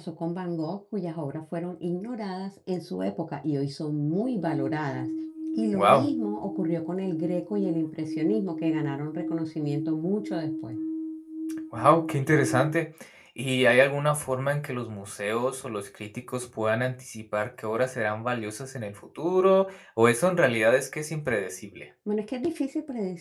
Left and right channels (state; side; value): identical; both; correlation 1.00